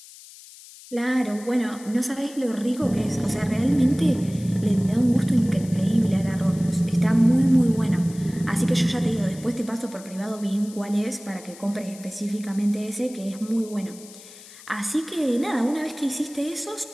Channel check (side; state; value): left; noise; hiss, 19 dB below the sound